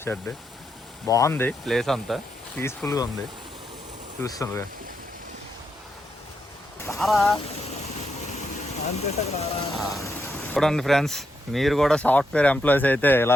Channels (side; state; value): both; normal; correlation 0.82